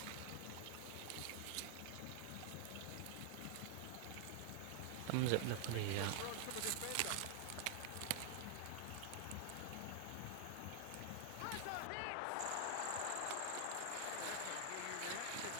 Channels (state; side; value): different; both; correlation 0.00